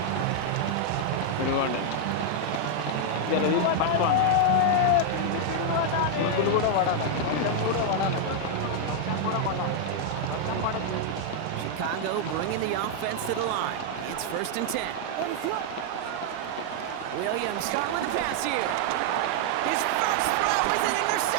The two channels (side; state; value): both; different; correlation -0.01